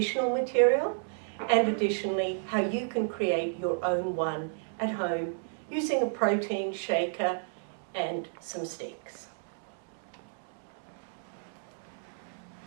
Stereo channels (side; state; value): left; silent; digital silence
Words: material and additionally how you can create your own one at home using a protein shaker and some sticks.